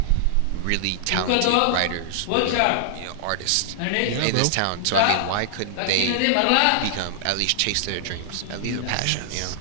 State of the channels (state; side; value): different; both; correlation -0.01